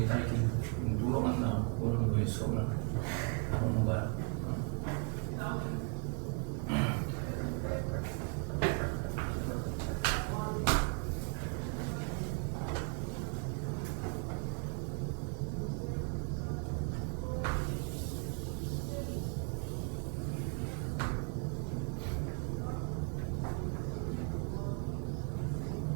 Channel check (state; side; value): quieter; left; 37.8 dB